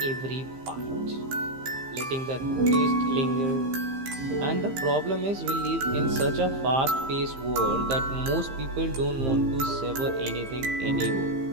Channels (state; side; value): late; left; 15 ms